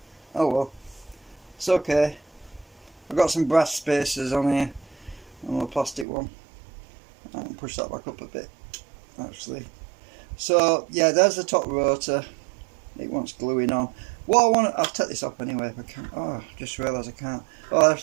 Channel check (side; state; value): left; drops out; at 6.1 s